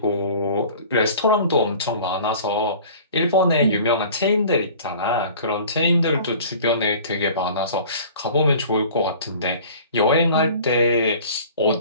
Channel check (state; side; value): inverted; both; correlation -0.45